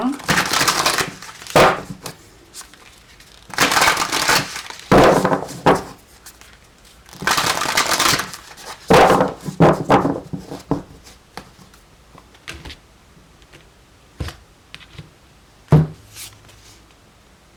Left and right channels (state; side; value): identical; both; correlation 1.00